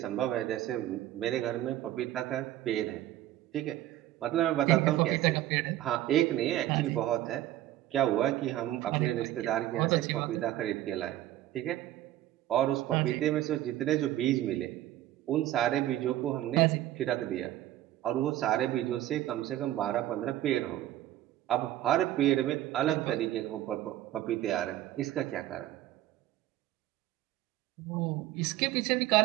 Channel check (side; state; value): left; quieter; 13.9 dB